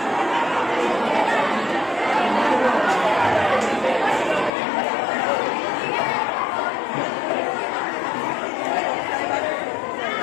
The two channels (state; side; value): drops out; right; at 4.5 s